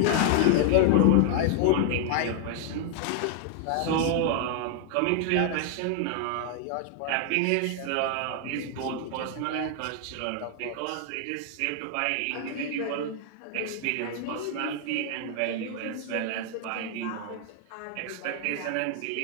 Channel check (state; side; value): different; both; correlation 0.00